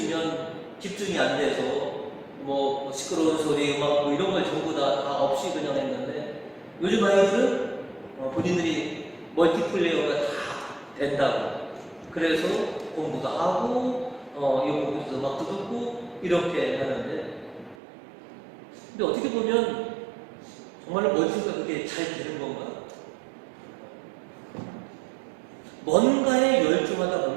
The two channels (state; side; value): drops out; left; at 17.8 s